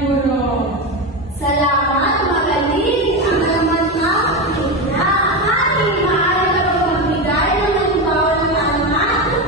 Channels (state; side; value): normal; both; correlation 0.16